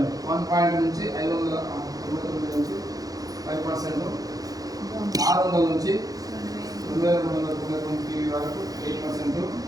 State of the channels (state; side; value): late; left; 0.18 ms